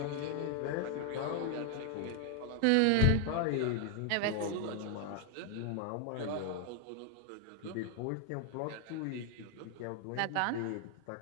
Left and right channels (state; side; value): different; both; correlation 0.00